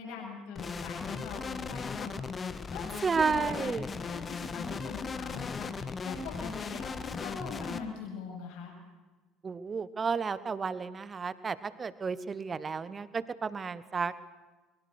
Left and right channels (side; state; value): both; normal; correlation 0.79